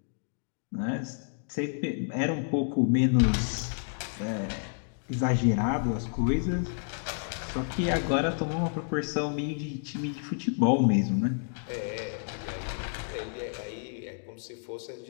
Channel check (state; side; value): silent; right; digital silence